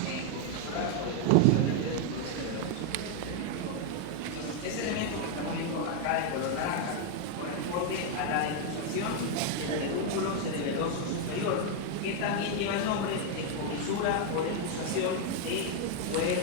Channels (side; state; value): both; different; correlation 0.01